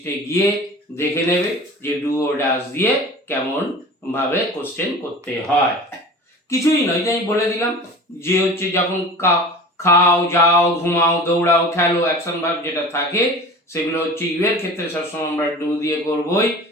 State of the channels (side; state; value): both; normal; correlation 0.38